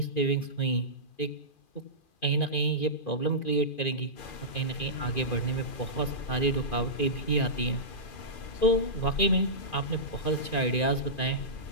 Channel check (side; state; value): right; late; 2.4 ms